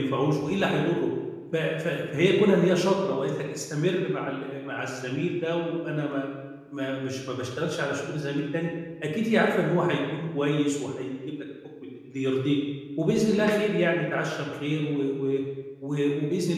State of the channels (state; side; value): identical; both; correlation 1.00